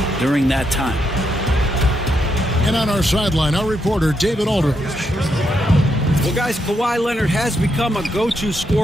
during that time. And on our sideline, our reporter, David Aldridge. Well, guys, Kawhi Leonard has become a go-to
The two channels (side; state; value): both; normal; correlation 0.80